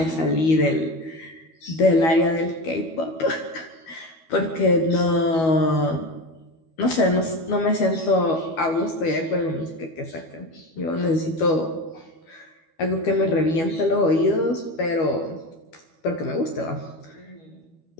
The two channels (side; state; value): right; late; 12 ms